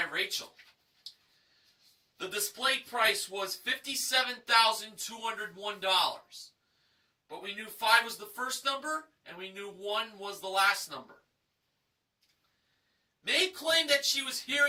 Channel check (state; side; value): identical; both; correlation 1.00